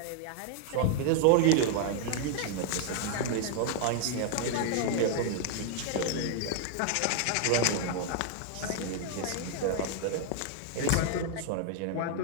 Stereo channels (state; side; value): different; both; correlation 0.00